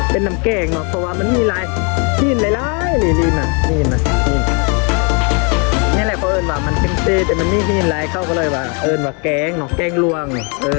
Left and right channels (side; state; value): right; quieter; 34.8 dB